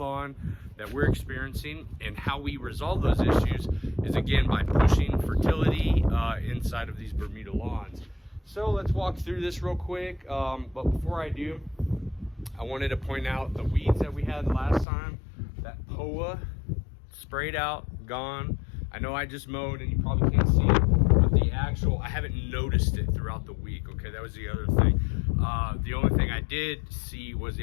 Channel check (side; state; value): right; drops out; at 14.9 s